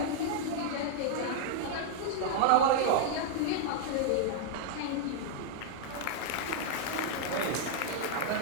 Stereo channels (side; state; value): both; different; correlation -0.01